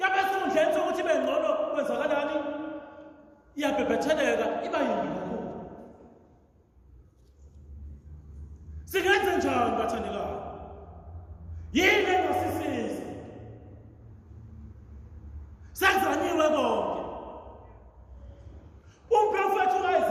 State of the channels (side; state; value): both; identical; correlation 1.00